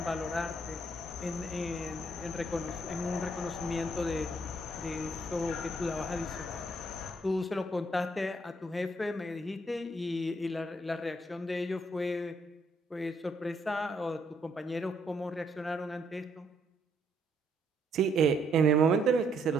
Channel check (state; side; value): normal; both; correlation 0.71